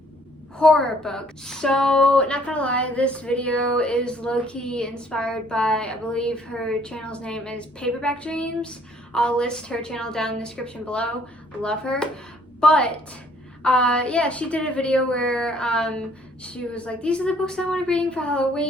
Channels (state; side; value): normal; both; correlation 0.61